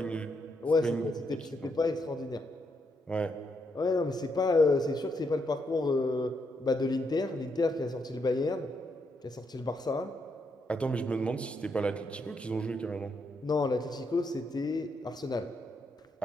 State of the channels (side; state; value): both; normal; correlation 0.78